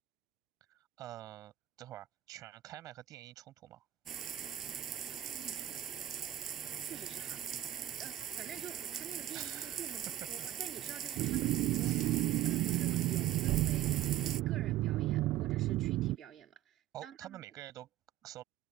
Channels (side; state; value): left; quieter; 13.5 dB